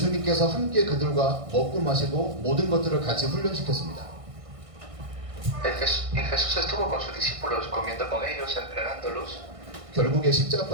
함께 그들과 먹고 마시고 모든 것들을 같이 훈련시켰습니다. Y Jesús estuvo con sus discípulos, comiendo con ellos, entrenándolos. 결국에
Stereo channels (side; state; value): left; late; 1.6 ms